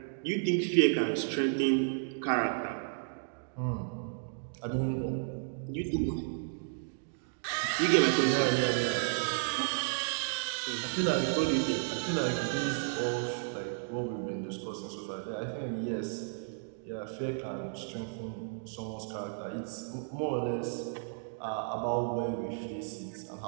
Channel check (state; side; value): silent; left; digital silence